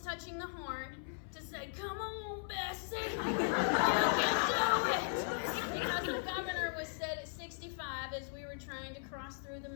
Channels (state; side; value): silent; right; 53 dB below the other